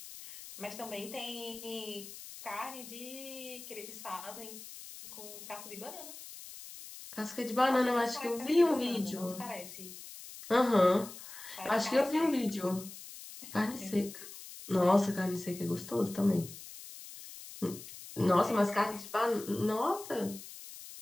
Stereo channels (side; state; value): left; noise; hiss, 14 dB below the sound